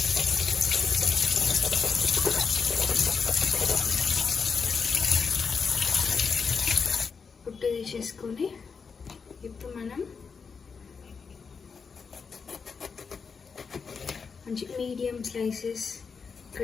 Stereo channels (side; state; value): right; quieter; 5.5 dB